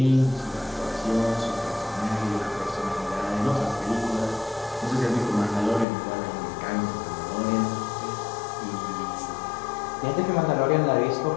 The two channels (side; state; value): right; drops out; at 5.9 s